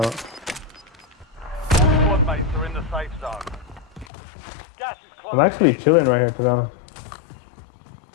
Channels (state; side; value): drops out; right; at 4.0 s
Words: Squad mates are in the safe zone. Gas is close. I'm actually chilling right here, to be honest.